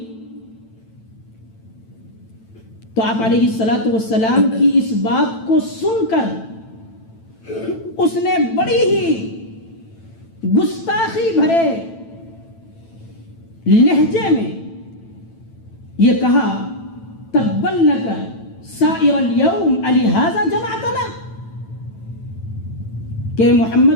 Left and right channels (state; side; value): late; right; 9.0 ms